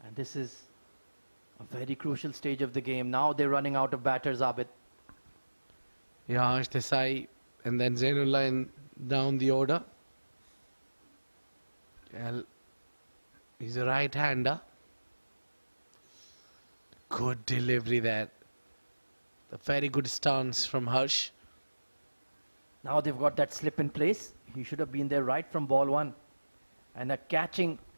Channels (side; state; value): both; inverted; correlation -1.00